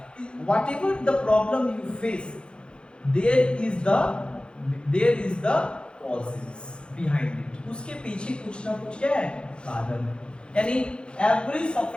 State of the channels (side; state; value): right; late; 0.054 ms